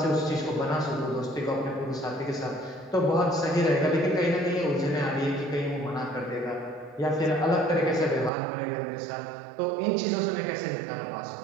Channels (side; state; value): left; drops out; at 8.3 s